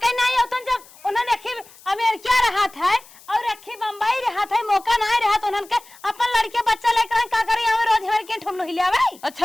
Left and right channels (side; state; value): left; noise; hiss, 23 dB below the sound